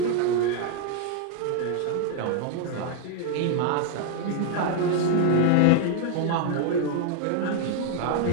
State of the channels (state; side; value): different; both; correlation 0.00